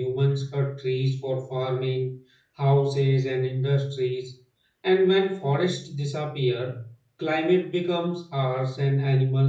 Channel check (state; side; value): identical; both; correlation 1.00